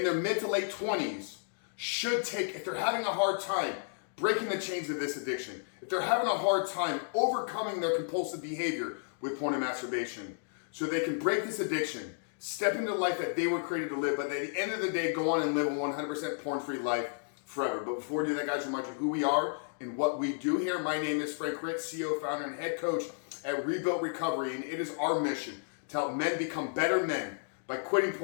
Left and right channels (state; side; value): silent; right; digital silence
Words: their mid to late 20s should take if they're having a hard time breaking the chains of this addiction, if they're having a hard time overcoming their compulsive behavior with porn and masturbation, so they can break this addiction, step into the life that they were created to live, but at the end of the day, go on and live a 100% porn-free life forever. But before we do that, guys, remind you who we are and what we do here. My name is Frank Ritt, CEO, founder, and head coach at Rebuilt Recovery, and it is our mission to help men become better men by quitting